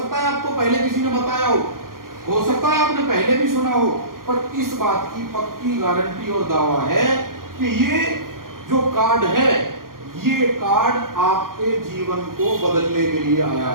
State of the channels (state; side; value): late; left; 0.91 ms